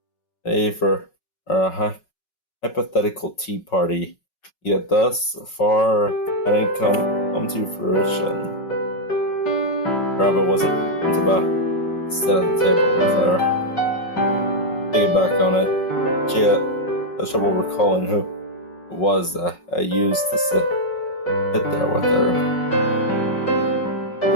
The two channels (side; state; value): right; late; 5.4 ms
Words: for a hypothetical tea party. Yet thus far, I didn't come to fruition. Rabbit wasn't about to sit at the table with her. Thinking back on it, she had trouble recalling who it was that I used to sit there with her.